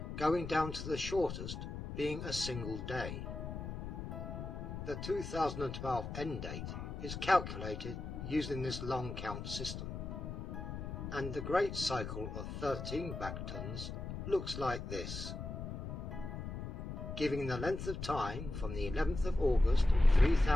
going down to the shortest being a single day. The 2012 end date is calculated using this long count system, and the great cycle of 13 Bactons looks like this, giving the length of time from the 11th of August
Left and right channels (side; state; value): left; noise; rumble, 6 dB below the sound